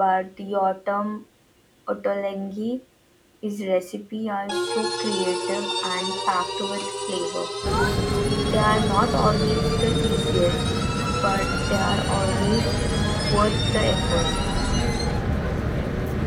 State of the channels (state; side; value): identical; both; correlation 1.00